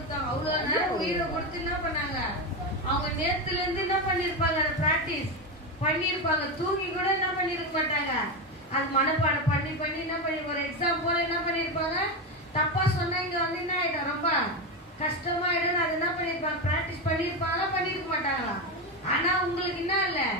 அவ்வளவு நேரம் உயிரை கொடுத்து என்ன பண்ணாங்க, அவங்க நேத்துல இருந்து என்ன பண்ணிருப்பாங்க, பிராக்டிஸ் பண்ணிருப்பாங்க. தூங்கி கூட என்ன பண்ணிருக்க மாட்டாங்க, அது மனப்பாடம் பண்ணி பண்ணி என்ன பண்ணி ஒரு எக்ஸாம் போல என்ன பண்ணிருப்பாங்க. தப்பா சொன்னா இங்க வந்து என்ன ஆயிடும், ரொம்ப கஷ்டமாயிடும். அது என்ன பண்ணிருப்பாங்க, பிராக்டிஸ் பண்ணிருப்பாங்களா பண்ணிருக்க மாட்டாங்களா? ஆனா உங்களுக்கு என்ன இல்ல,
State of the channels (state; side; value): normal; both; correlation 0.14